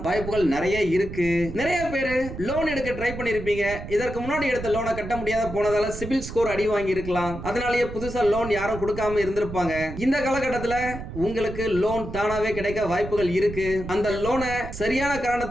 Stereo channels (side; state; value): right; noise; rumble, 9 dB below the sound